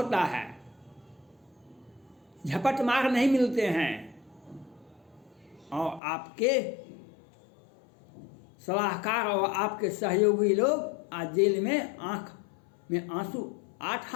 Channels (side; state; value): right; drops out; at 6.0 s